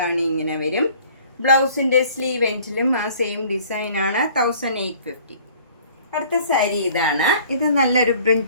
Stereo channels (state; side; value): inverted; both; correlation -0.53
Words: ഇങ്ങനെ വരും. ബ്ലൗസിൻ്റെ സ്ലീവ് എൻഡിലും ആ സെയിം ഡിസൈനാണ്. 1850. അടുത്ത സാരി ഇതാണ്. ഇത് നല്ലൊരു